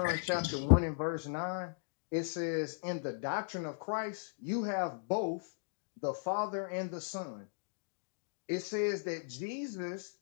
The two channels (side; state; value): right; silent; digital silence